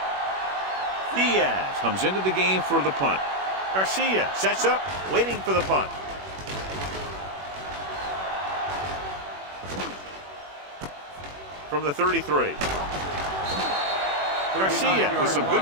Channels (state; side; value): late; left; 21 ms